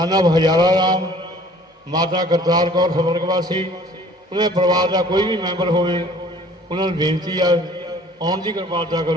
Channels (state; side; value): normal; both; correlation 0.53